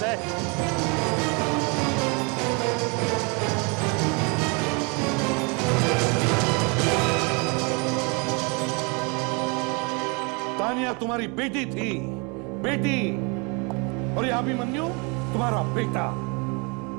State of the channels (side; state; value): left; quieter; 31.6 dB